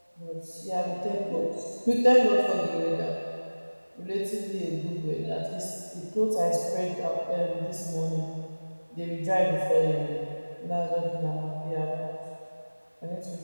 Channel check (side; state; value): both; inverted; correlation -1.00